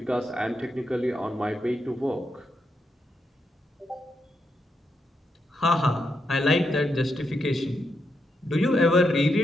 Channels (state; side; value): normal; both; correlation 0.82